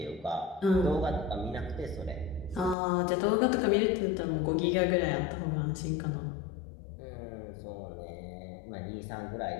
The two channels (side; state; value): right; drops out; at 2.8 s